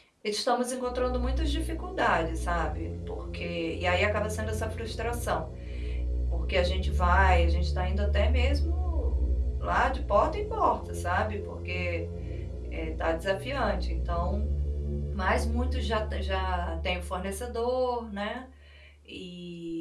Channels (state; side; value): identical; both; correlation 1.00